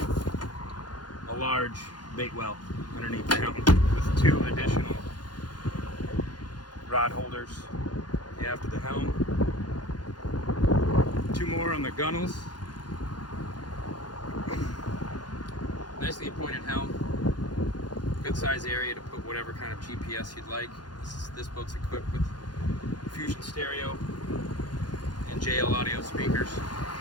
a large bait well underneath the helm with 2 additional rod holders after the helm. 2 more on the gunnels. Nicely appointed helm. Good size area to put whatever kind of GPS you'd like. This boat's equipped with Fusion stereo and JL audio speakers.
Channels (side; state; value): right; late; 0.70 ms